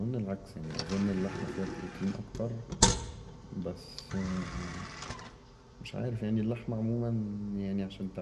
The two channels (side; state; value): both; identical; correlation 1.00